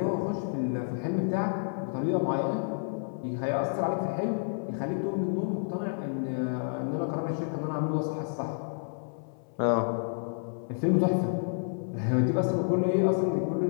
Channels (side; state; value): right; silent; 58 dB below the other